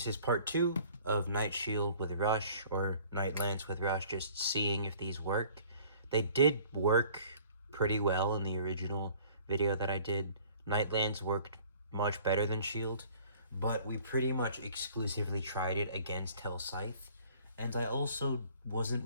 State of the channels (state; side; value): inverted; both; correlation -0.52